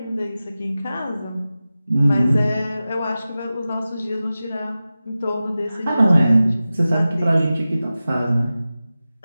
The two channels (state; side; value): inverted; both; correlation -0.95